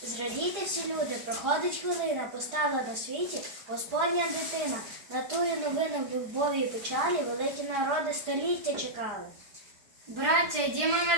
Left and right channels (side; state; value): left; late; 4.9 ms